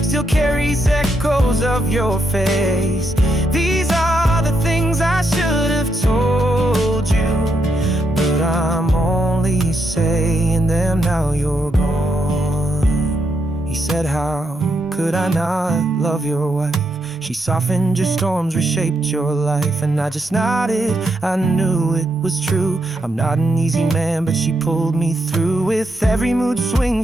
still carries echoes of your face. These are the things I should have told you, but I'm only saying them now you're gone. He said, how could I not love your wife? She softened your storms, reshaped your life. And I just nodded, I knew it was true. I'm not an easy man, but she pulled me through. With every mood swing,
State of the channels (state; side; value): normal; both; correlation 0.80